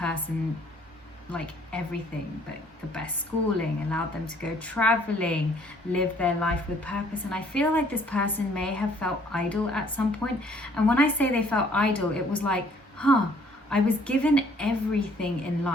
like everything, but the best schooling, allowed them to go traveling, live their life with purpose. And I feel like this person may have felt idle at some point. And when I say they felt idle, it was like, I was given everything in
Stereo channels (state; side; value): normal; both; correlation 0.61